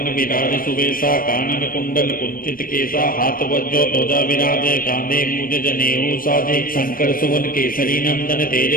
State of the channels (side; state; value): right; late; 0.41 ms